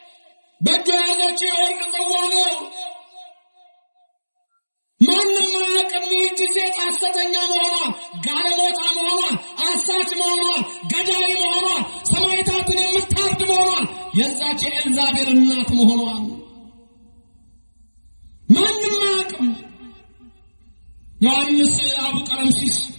በእጇ ያዘችው የወርቅ ጽዋ ነው። ማንም አያውቅም ይህቺ ሴት ሐሰተኛ መሆኗን፣ ጋለሞታ መሆኗን፣ አሳች መሆኗን፣ ገዳይ መሆኗን፣ ሰማዕታትን የምታርድ መሆኗን፣ የዛች የኤልዛቤል እናት መሆኗን ማንም አያውቅም። ዮሐንስ አቡ ቀለምሲስ፣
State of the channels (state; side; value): inverted; both; correlation -1.00